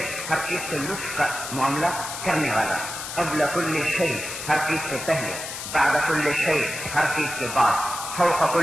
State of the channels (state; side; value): noise; left; hiss, 7 dB below the sound